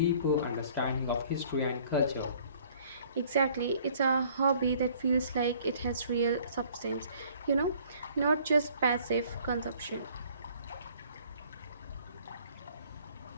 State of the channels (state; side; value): inverted; both; correlation -0.57